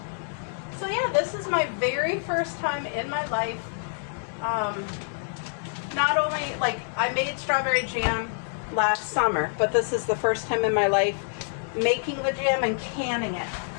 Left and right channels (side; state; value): right; silent; digital silence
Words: So yeah, this is my very first time in my life. Not only, like, I made strawberry jam last summer, but this is the first time in my life making the jam and canning it.